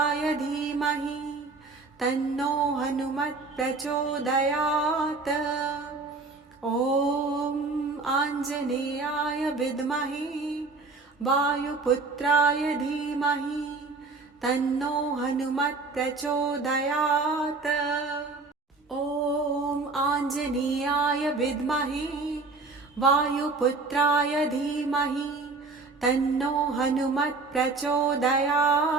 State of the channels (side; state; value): left; quieter; 3.9 dB